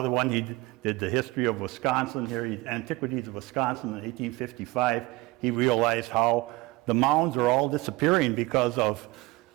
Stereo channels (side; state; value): left; quieter; 21.5 dB